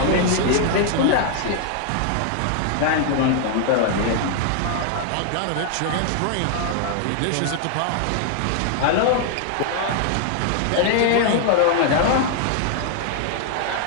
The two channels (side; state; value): both; different; correlation 0.00